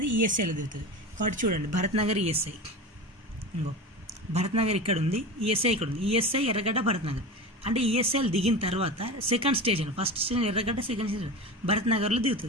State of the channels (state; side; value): normal; both; correlation 0.28